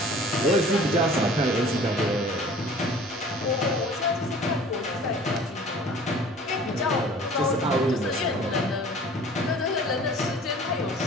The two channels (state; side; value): normal; both; correlation 0.47